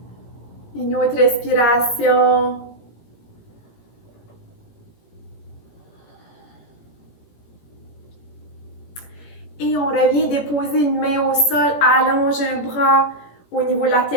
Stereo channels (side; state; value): right; late; 17 ms